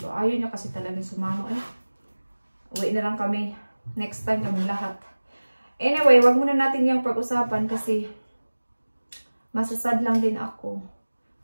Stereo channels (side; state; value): both; inverted; correlation -1.00